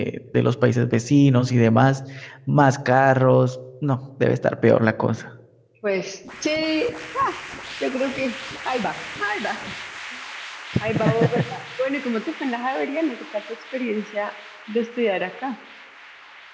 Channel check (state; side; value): identical; both; correlation 1.00